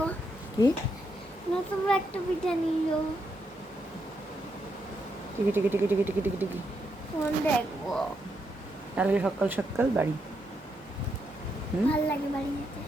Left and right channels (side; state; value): both; normal; correlation 0.80